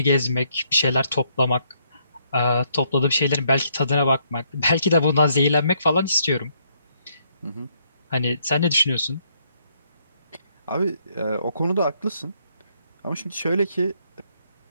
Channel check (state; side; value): inverted; both; correlation -0.72